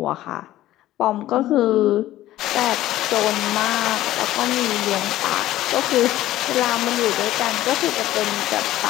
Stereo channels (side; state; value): right; quieter; 14.7 dB